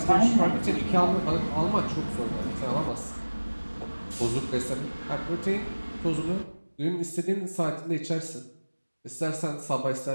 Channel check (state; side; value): inverted; both; correlation -1.00